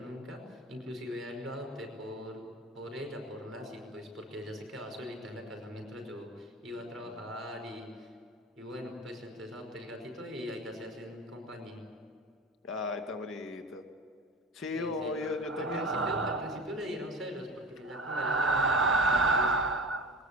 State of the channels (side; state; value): both; normal; correlation 0.34